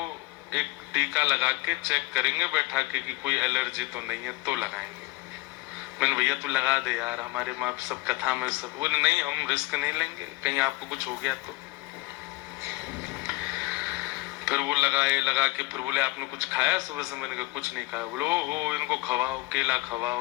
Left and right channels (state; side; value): quieter; right; 21.3 dB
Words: एक टीका लगा के चेक करेंगे बैठा के कि कोई एलर्जी तो नहीं है, तो लगाएंगे। मैंने भैया तू लगा दे यार, हमारे माँ सब कथा में सब। वो नहीं, हम रिस्क नहीं लेंगे, कहीं आपको कुछ हो गया तो। फिर वो लगाए, लगा के फिर बोले आपने कुछ खाया सुबह से? मैंने कहा कुछ नहीं खाया। बोले ओहो, इनको खवाओ, केला